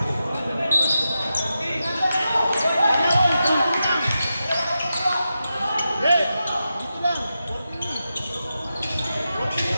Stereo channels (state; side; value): inverted; both; correlation -0.89